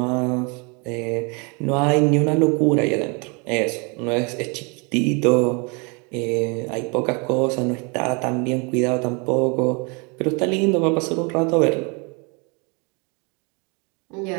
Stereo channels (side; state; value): left; quieter; 32.1 dB